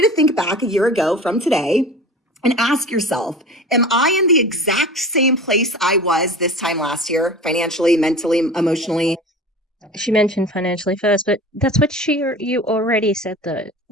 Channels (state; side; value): normal; both; correlation 0.36